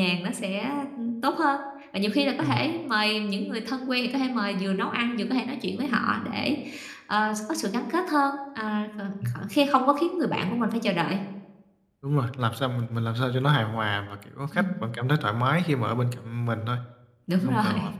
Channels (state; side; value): identical; both; correlation 1.00